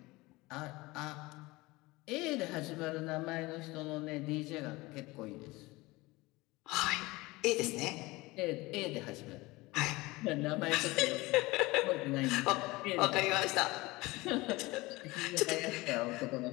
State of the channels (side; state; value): right; quieter; 21.6 dB